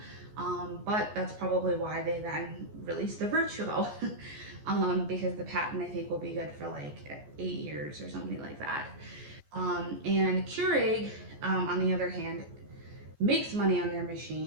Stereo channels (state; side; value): late; left; 14 ms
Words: But that's probably why they then released the Vertuo, because the patent I think will be good for like 8 years or something like that. And Keurig, on the other hand, makes money on their